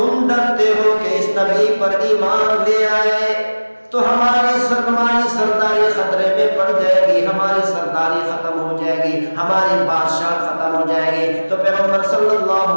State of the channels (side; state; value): both; inverted; correlation -1.00